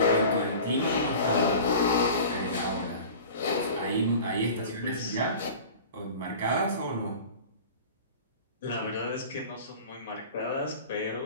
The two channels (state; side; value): inverted; both; correlation -0.39